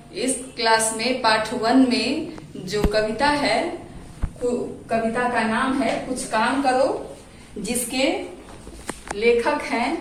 इस क्लास में पार्ट 1 में जो कविता है, कविता का नाम है कुछ काम करो, जिसके लेखक हैं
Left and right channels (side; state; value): both; identical; correlation 1.00